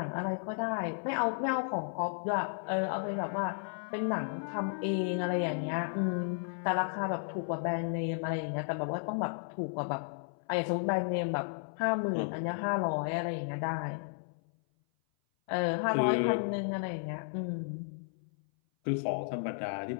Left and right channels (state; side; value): silent; right; 55 dB below the other